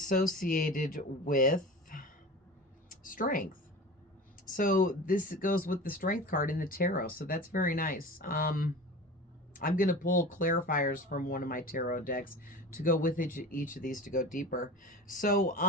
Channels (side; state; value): both; normal; correlation 0.34